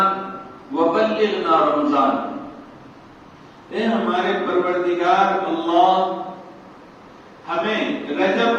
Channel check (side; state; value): both; identical; correlation 1.00